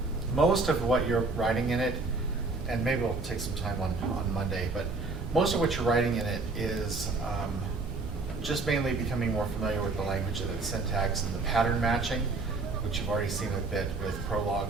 Most of what you're writing in it, and maybe we'll take some time on Monday, but most of what you're writing in it is just mainly becoming more familiar with the language of its syntax and the pattern matching, which you've already seen a bit with Prolog.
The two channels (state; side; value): quieter; left; 3.6 dB